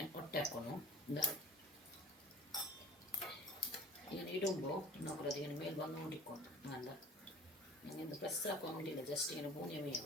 ഒട്ടാക്കുന്നു എന്താ ഇങ്ങനെ ഇടുമ്പോൾ നോക്കൂല അതിങ്ങനെ മേൽ വന്നുകൊണ്ടിരിക്കും നല്ല நீங்கள் இந்த ப்ரெஸ் ஆக்க முடியல, ஜஸ்ட் எனக்கு பூனியமே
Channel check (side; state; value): both; normal; correlation 0.43